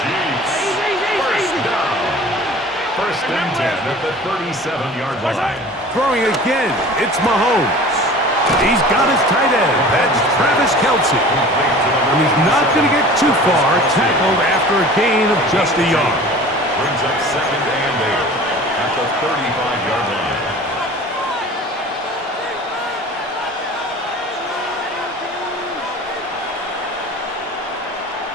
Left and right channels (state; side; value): normal; both; correlation 0.42